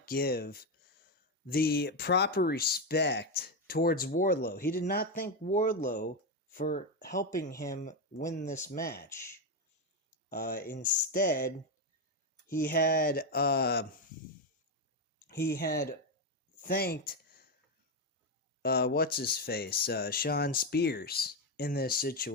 give the proper respect towards Wardlow. He did not thank Wardlow for helping him win this match. Instead, he had thanked Sean Spears in this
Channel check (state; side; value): normal; both; correlation 0.08